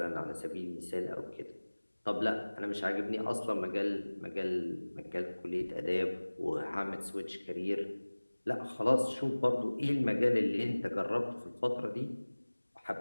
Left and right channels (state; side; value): inverted; both; correlation -1.00